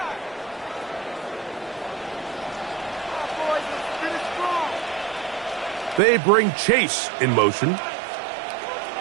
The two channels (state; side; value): drops out; left; at 6.0 s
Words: They bring Chase in motion.